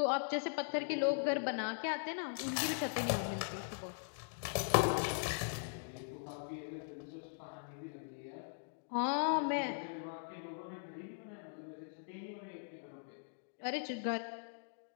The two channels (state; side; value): silent; right; digital silence